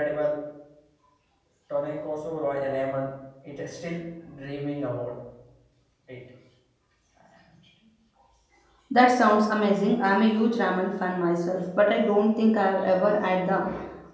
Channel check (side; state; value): both; identical; correlation 1.00